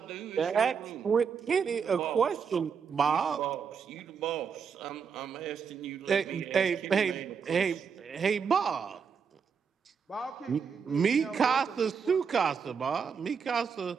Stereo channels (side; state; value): left; quieter; 6.4 dB